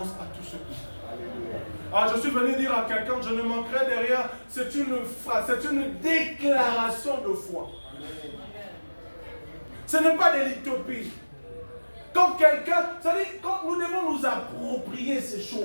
à tous ceux qui sont. Alors je suis venu dire à quelqu'un, je ne manquerai de rien, c'est une phrase, c'est une déclaration de foi. Ce n'est pas de l'utopie. Quand quelqu'un, c'est-à-dire, quand nous devons nous approprier ces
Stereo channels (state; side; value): inverted; both; correlation -1.00